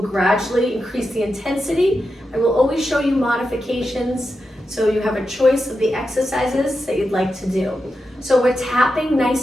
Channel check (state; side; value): normal; both; correlation 0.89